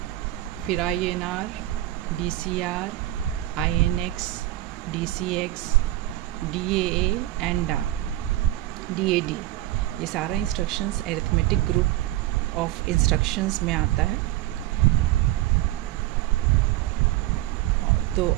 फिर INR, DCR, INX, DCX, DAA and DAD। ये सारा instructions arithmetic group of instructions में आता है। तो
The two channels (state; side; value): quieter; left; 16.0 dB